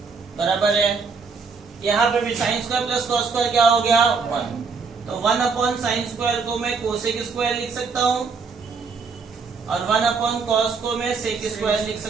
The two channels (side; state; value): left; quieter; 5.0 dB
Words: बराबर है. यहाँ पे भी sine square plus cos square क्या हो गया 1, तो 1 अपॉन साइन स्क्वायर को मैं कोसेक स्क्वायर लिख सकता हूँ और 1 अपॉन कॉस को मैं सेक स्क्वायर लिख